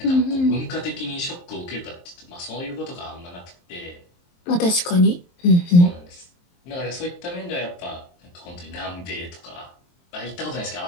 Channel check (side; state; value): right; late; 23 ms